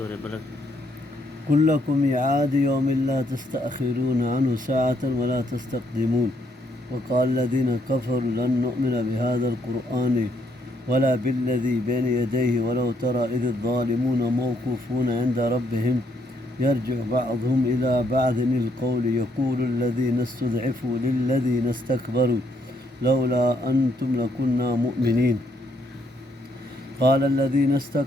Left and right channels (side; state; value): both; normal; correlation 0.72